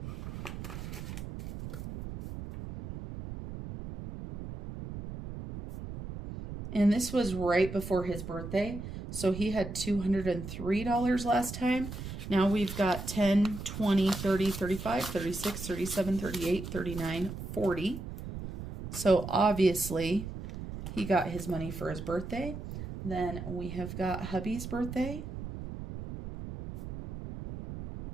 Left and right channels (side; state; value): right; noise; rumble, 9 dB below the sound